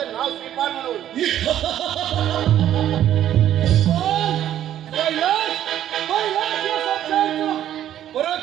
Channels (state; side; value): quieter; left; 11.4 dB